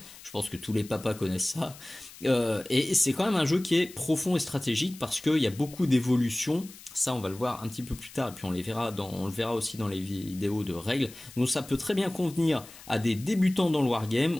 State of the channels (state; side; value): noise; left; hiss, 18 dB below the sound